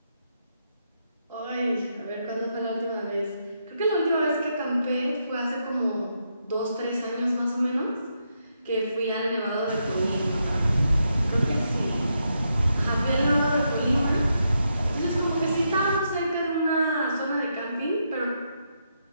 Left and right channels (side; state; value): both; inverted; correlation -0.81